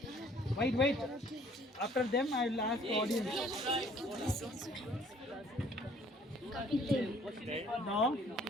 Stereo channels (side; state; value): both; normal; correlation 0.58